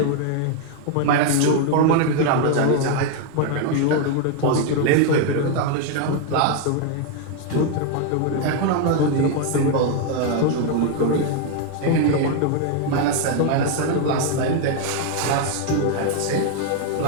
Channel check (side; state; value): both; different; correlation 0.01